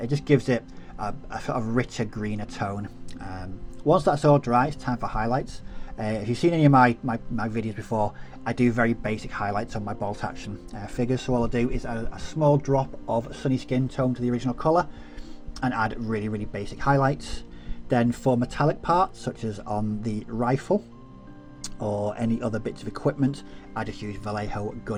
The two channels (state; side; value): identical; both; correlation 1.00